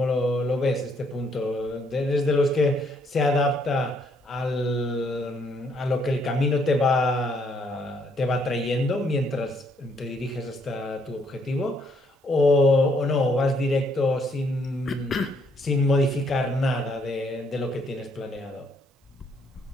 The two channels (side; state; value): both; normal; correlation 0.70